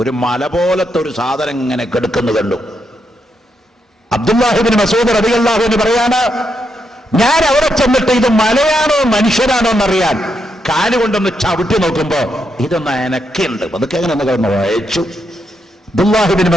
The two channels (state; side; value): normal; both; correlation 0.81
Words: മല പോലത്തെ ഒരു സാധനം ഇങ്ങനെ കിടക്കുന്നു കണ്ടു. അബ്ദുല്ലാഹി ഇബ്നു മസ്ഊദ് റളിയല്ലാഹു അൻഹു പറയാണ്, ഞാൻ അവിടെ ചെന്നിട്ട് ഇത് മലയാണോ മനുഷ്യരാണോ എന്നറിയാൻ കാലുകൊണ്ടൊന്ന് ചവിട്ടി നോക്കുമ്പോ ഇതൊന്ന് എനക്കുണ്ട്. അതൊക്കെ എങ്ങനെ ഒന്ന് വായിച്ചു. അബ്ദുല്ലാഹി ഇബ്നു